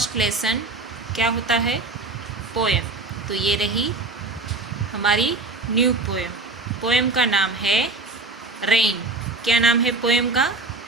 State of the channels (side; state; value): left; quieter; 3.4 dB